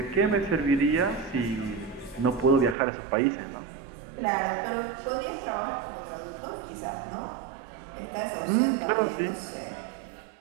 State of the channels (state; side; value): drops out; left; at 2.8 s